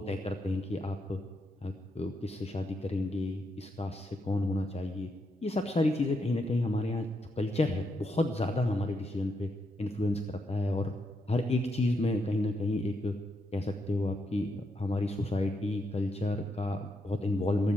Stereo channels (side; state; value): both; normal; correlation 0.80